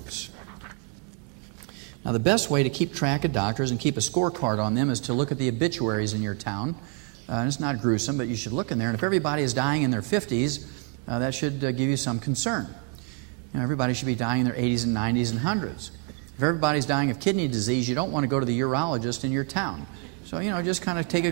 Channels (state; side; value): quieter; left; 30.4 dB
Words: Now, the best way to keep track of doctors and keep a scorecard on them is to look at the obituaries in your town. And it's not gruesome, but you should look in there. And if everybody is dying in their 50s, that should give you some concern. Everybody should be dying in their 80s and 90s and 100s. If everybody's dying of kidney disease, you don't want to go to the urologist in your town. So, just kind of take a